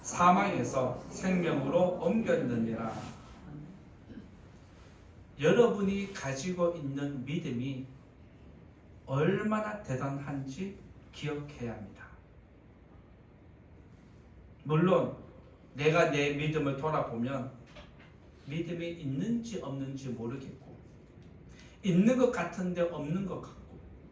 사망에서 생명으로 옮겼느니라. 여러분이 가지고 있는 믿음이 얼마나 대단한지 기억해야 합니다. 물론 내가 내 믿음을 돌아보면 믿음이 있는지 없는지 모르겠고 있는 것 같은데 없는 것 같고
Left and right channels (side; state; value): both; identical; correlation 1.00